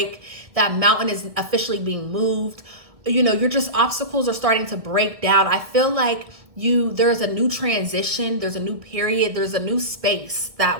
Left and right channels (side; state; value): left; late; 1.7 ms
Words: That mountain is officially being moved. You know, obstacles are starting to break down. I feel like there's a new transition, there's a new period, there's a new space